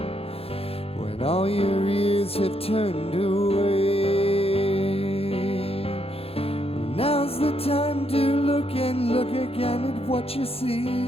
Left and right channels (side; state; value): right; late; 0.28 ms